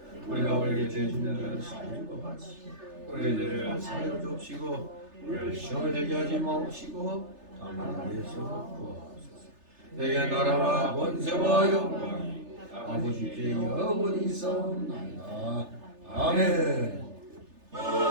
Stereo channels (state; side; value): late; left; 3.3 ms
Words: 우리가 우리에게 죄진 자를 사해준 것 같이 우리의 죄를 사하여 주옵시고 우리를 시험에 들게 하지 마옵시고 다만 우리에서 구하옵소서. 내게 나라와 권세와 영광이 아버지께 영원히 있사옵나이다. 아멘.